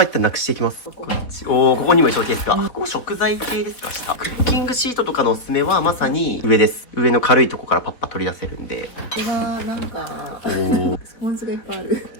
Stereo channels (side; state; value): right; late; 4.1 ms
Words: 一旦なくしていきます。ここにも衣装ケースが。ここ食材系ですか、下。クッキングシートとかのおすすめはまさに上です。上の軽いとこからパッパ取り出せるんで。これはなんか、スポンジがいっぱいある。